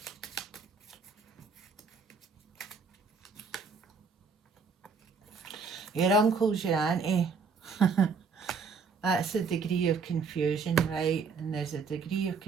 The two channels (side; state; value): left; quieter; 5.1 dB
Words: Your uncle's your auntie. That's a degree of confusion, right? And there's a degree of